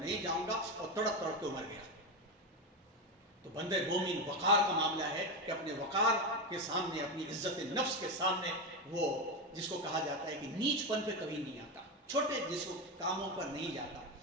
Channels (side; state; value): both; normal; correlation 0.14